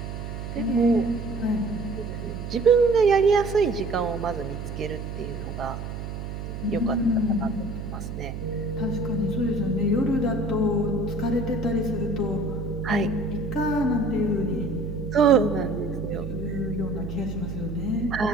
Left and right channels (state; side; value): noise; right; hum, 7 dB below the sound